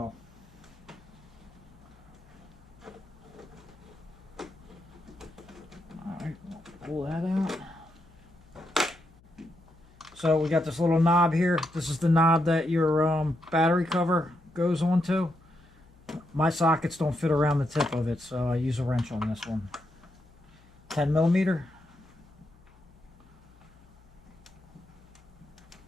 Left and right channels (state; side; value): noise; left; hum, 27 dB below the sound